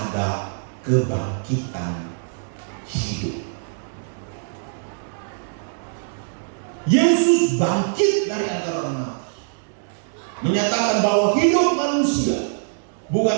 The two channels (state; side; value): silent; left; digital silence